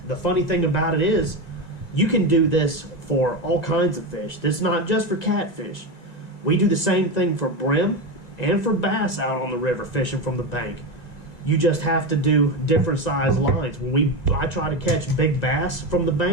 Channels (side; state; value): right; late; 1.9 ms